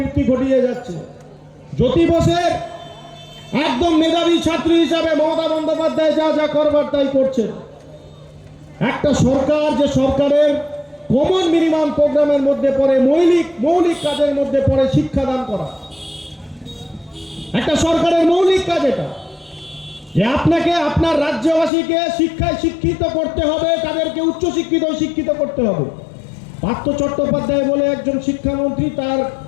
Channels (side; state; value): right; drops out; at 21.7 s